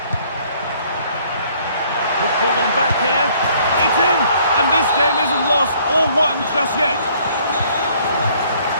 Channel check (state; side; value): inverted; both; correlation -0.61